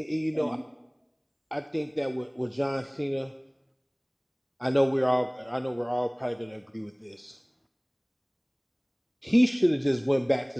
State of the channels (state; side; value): identical; both; correlation 1.00